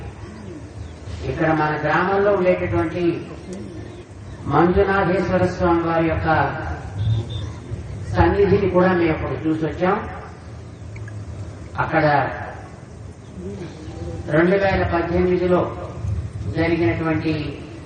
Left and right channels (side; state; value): both; identical; correlation 1.00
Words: ఇక్కడ మన గ్రామంలో ఉండేటటువంటి మంజునాథేశ్వర స్వామి వారి యొక్క సన్నిధిని కూడా మేము ఇప్పుడు చూసొచ్చాం. అక్కడ 2018లో జరిగినటువంటి